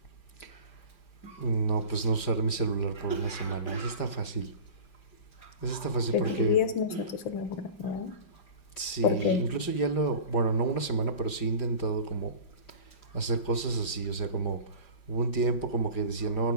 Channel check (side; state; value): right; late; 5.0 ms